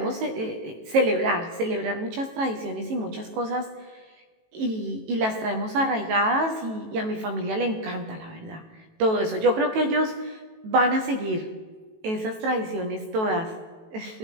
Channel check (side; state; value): left; late; 18 ms